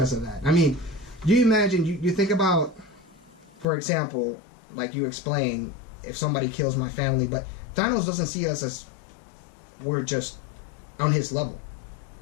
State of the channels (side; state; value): right; drops out; at 3.7 s